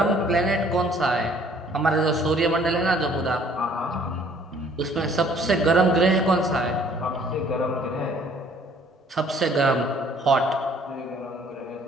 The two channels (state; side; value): normal; both; correlation 0.58